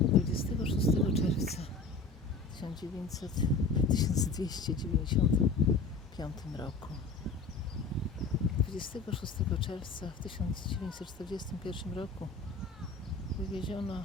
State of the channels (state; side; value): quieter; right; 4.1 dB